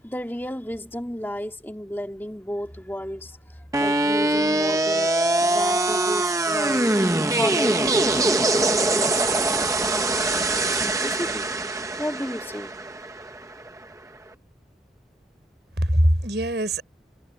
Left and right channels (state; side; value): normal; both; correlation 0.65